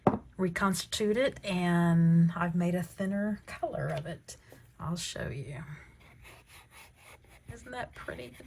reconstitute it, and I've made a thinner color of it. I'll show you. Isn't that pretty?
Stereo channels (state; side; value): identical; both; correlation 1.00